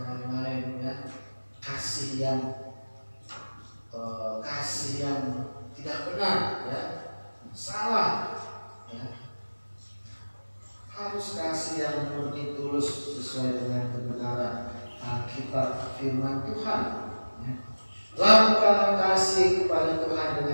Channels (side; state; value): both; inverted; correlation -1.00